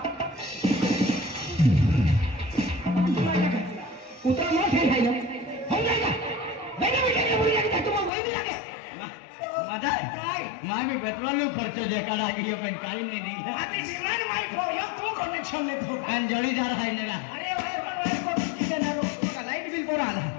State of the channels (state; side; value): drops out; right; at 8.1 s